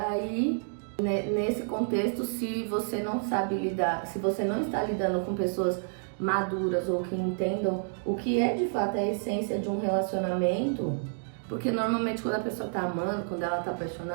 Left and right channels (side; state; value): left; silent; digital silence